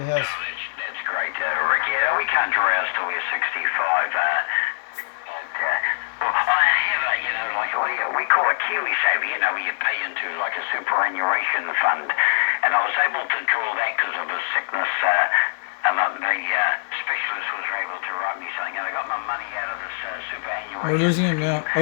has. That's great, Rick. Yeah, we can't dress till we're 65. Well, I have like we call a Kiwi saver, where you pay into like a superannuation fund. And I was able to draw that because of a sickness. And the specialist was able to write me something, and I got my money out of this superannuation. We're losing him now.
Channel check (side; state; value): right; silent; digital silence